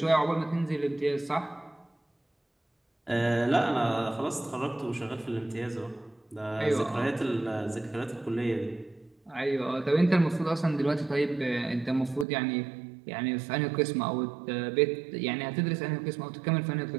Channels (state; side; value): drops out; left; at 12.2 s